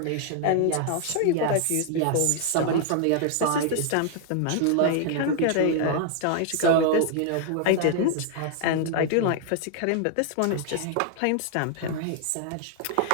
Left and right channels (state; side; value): different; both; correlation 0.00